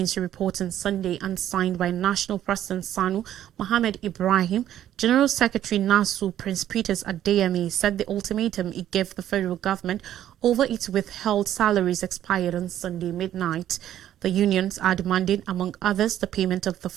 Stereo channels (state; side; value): quieter; left; 11.6 dB